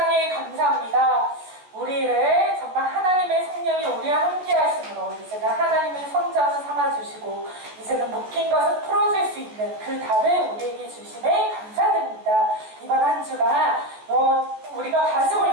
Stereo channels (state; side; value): late; left; 14 ms